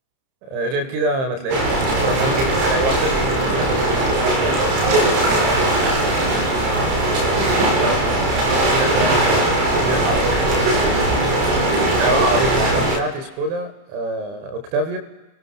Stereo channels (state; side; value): late; left; 30 ms